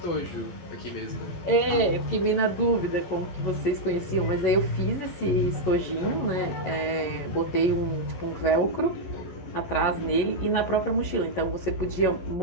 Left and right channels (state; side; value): late; right; 11 ms